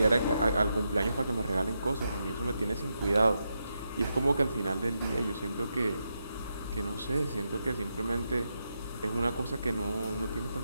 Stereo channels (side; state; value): both; inverted; correlation -0.85